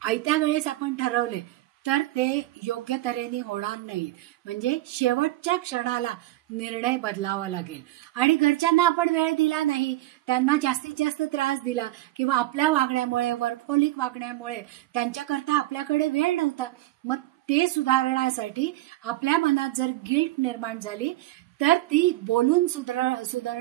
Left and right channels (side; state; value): left; quieter; 17.2 dB